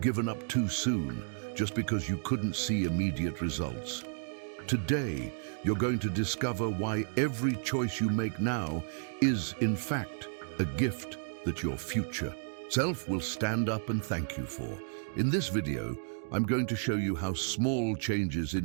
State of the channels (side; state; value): left; silent; digital silence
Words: up too soon just because you couldn't see immediate results? Today, you're going to discover why every choice you make now is, in fact, a gift that your future self will stand up and thank you for. In this video, I'm going to show you how small changes